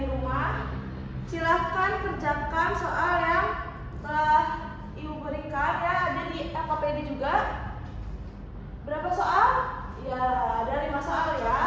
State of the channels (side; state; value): both; identical; correlation 1.00